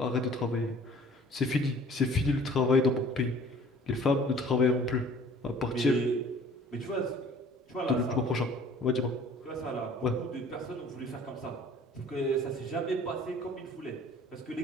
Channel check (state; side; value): normal; both; correlation 0.51